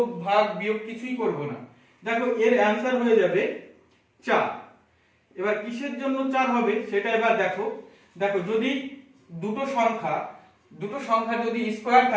ভাগ বিয়োগ কিছুই করব না। দেখো এর অ্যানসার হয়ে যাবে 4। এবার কিসের জন্য 4 হবে সেটা এবার দেখো। দেখো যদি দুটো সংখ্যা যদি স্কয়ার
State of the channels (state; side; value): identical; both; correlation 1.00